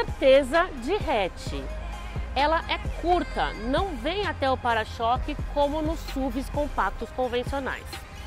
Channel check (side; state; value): both; identical; correlation 1.00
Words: de hatch. Ela é curta, não vem até o para-choque como nos SUVs compactos convencionais.